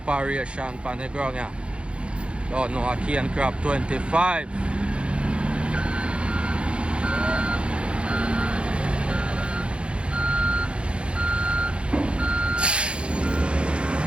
on the ground, yeah. Don't know, a cane crab 25.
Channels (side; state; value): left; late; 0.058 ms